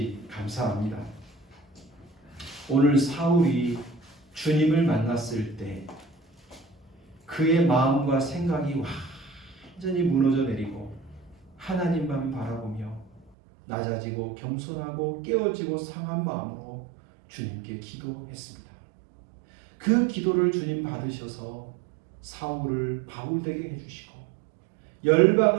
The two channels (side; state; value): left; drops out; at 13.3 s